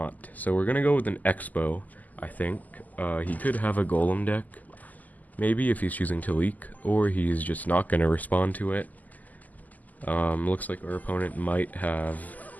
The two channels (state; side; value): late; right; 0.080 ms